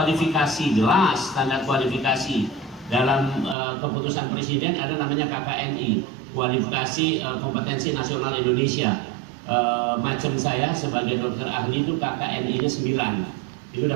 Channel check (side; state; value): left; drops out; at 3.6 s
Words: jelas standar kualifikasi. Dalam keputusan presiden ada namanya KKNI, kualifikasi kompetensi nasional Indonesia. Macam saya sebagai dokter ahli itu KKNI-nya 9, itu